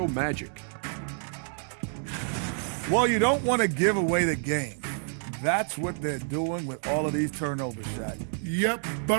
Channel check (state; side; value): silent; left; 58 dB below the other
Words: Magic. Well, you don't want to give away the game. That's what they're doing with all of these turnover shots. Yep,